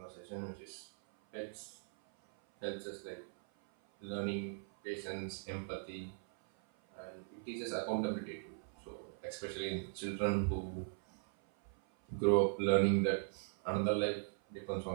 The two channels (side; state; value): left; silent; 52 dB below the other